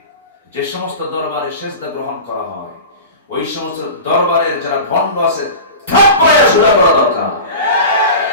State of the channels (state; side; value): inverted; both; correlation -0.32